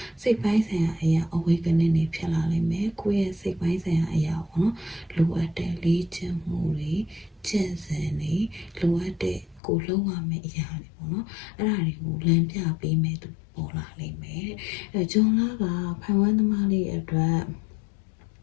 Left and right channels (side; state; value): right; drops out; at 9.6 s